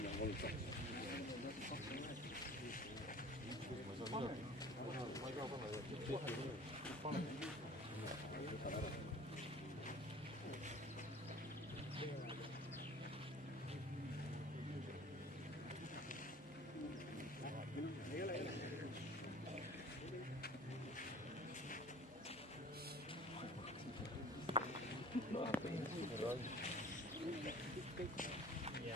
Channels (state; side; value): normal; both; correlation 0.45